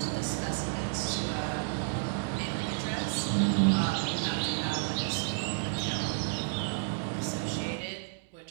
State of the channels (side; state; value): left; silent; digital silence